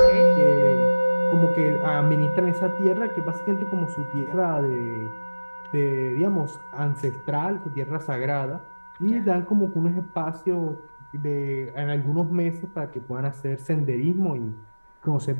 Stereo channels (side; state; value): both; inverted; correlation -1.00